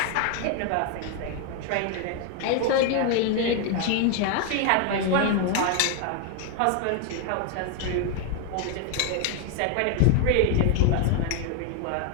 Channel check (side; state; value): both; different; correlation 0.01